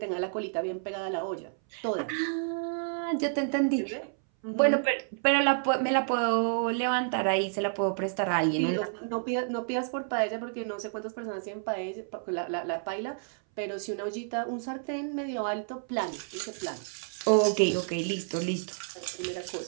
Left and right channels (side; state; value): left; silent; 58 dB below the other